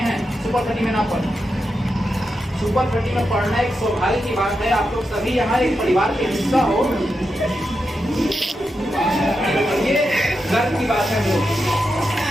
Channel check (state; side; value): normal; both; correlation 0.87